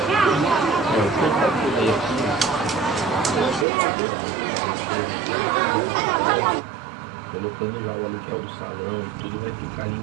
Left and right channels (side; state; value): left; drops out; at 3.7 s